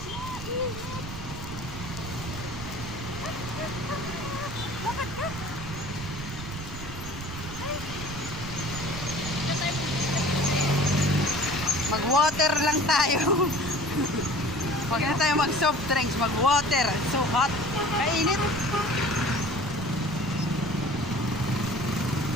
Bakit ka? Mag-water lang tayo. Huwag na tayo mag-soft drinks, mag-water. It's so hot. Kainit.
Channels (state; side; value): noise; right; rumble, 10 dB below the sound